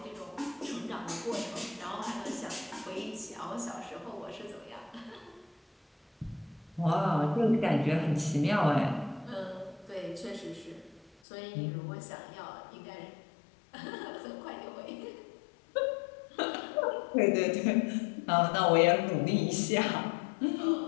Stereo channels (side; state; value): right; drops out; at 11.1 s